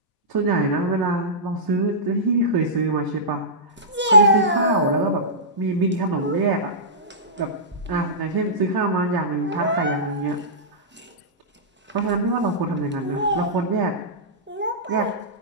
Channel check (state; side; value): normal; both; correlation -0.17